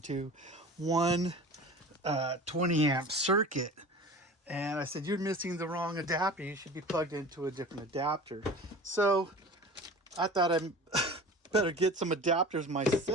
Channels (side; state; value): both; normal; correlation 0.38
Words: one 20 amp circuit. And I said, you're missing the wrong adapter. You should be plugged into a different adapter. So I thought I better get some adapters